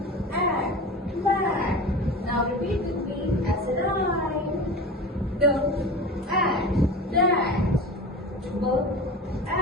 add, mat. Now repeat with me as a rhyme. D, add, dash.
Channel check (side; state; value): both; normal; correlation 0.32